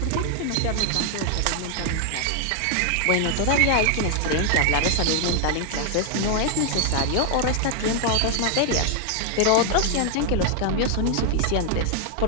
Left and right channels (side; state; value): both; different; correlation 0.00